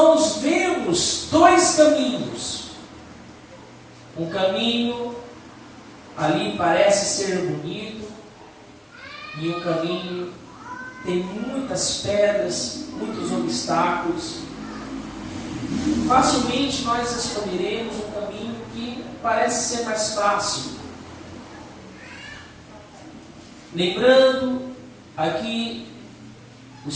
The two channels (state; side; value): identical; both; correlation 1.00